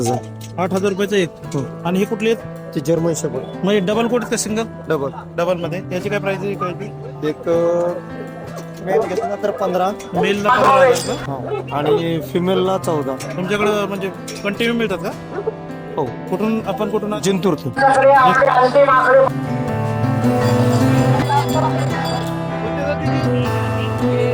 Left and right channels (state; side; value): identical; both; correlation 1.00